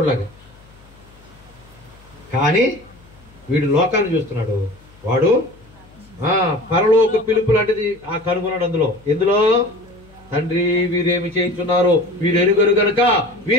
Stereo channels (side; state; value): left; noise; hum, 26 dB below the sound